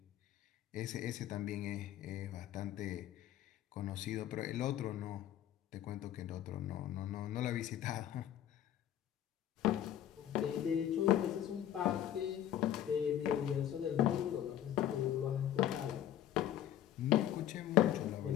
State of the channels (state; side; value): quieter; right; 11.4 dB